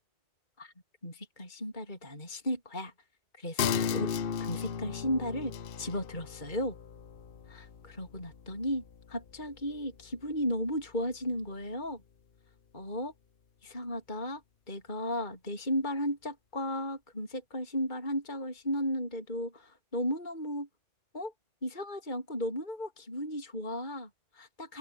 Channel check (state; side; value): late; right; 2.5 ms